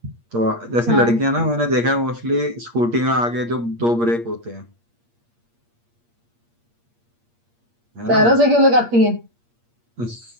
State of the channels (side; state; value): left; late; 8.5 ms